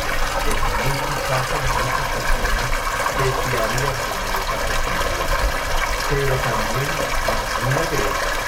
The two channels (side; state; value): both; identical; correlation 1.00